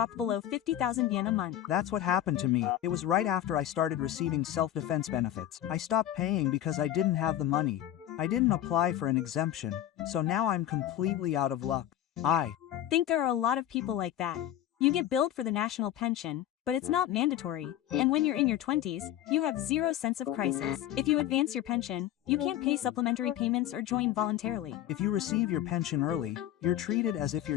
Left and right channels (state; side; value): quieter; right; 12.1 dB